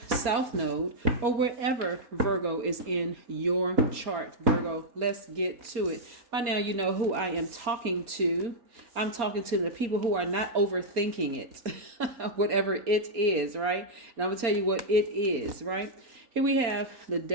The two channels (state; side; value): late; left; 4.3 ms